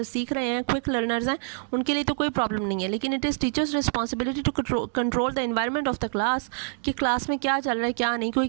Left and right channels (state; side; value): silent; left; 61 dB below the other